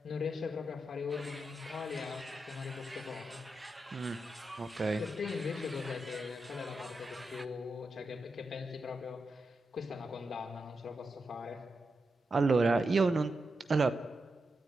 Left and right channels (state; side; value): normal; both; correlation 0.87